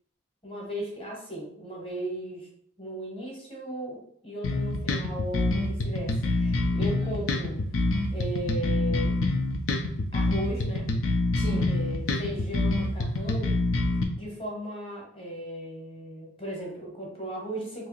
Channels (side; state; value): both; normal; correlation 0.70